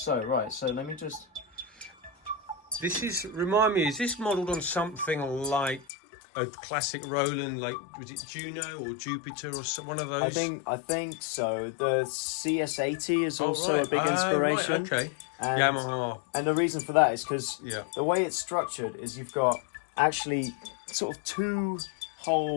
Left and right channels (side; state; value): right; drops out; at 5.9 s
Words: let me just. Remind me, is this modelled on something like a classic Roland, like was it Juno or Jupiter or one of those? I think so. The CS80 is also a big inspiration. Right, okay. Yamaha. And the reason for that is because Yeah. the way it's structured is you've got actually sort of two